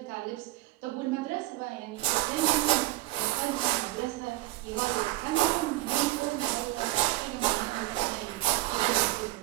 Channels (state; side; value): quieter; left; 18.2 dB